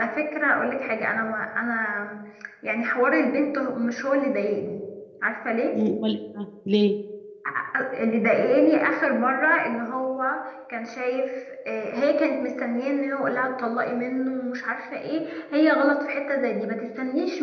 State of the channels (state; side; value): identical; both; correlation 1.00